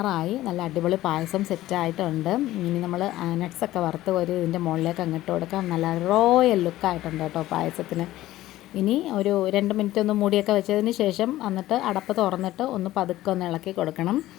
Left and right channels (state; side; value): quieter; right; 15.4 dB